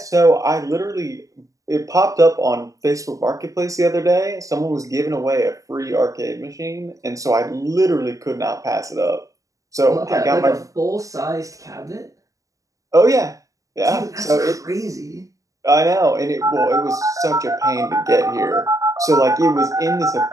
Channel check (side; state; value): left; late; 0.16 ms